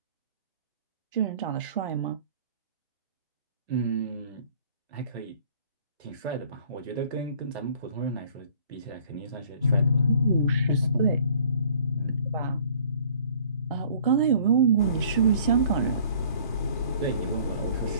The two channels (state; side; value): inverted; both; correlation -0.54